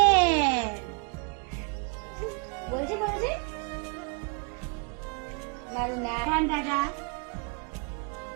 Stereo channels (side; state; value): left; quieter; 36.2 dB